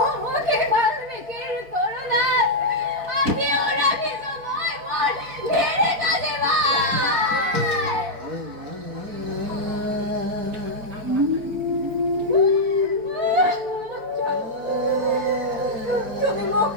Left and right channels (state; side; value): late; left; 4.6 ms